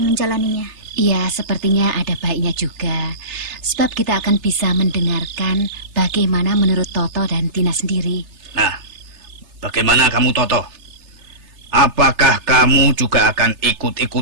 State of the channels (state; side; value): late; left; 3.3 ms